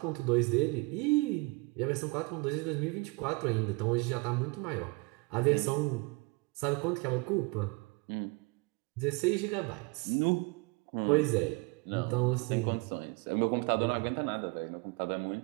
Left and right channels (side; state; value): left; quieter; 27.9 dB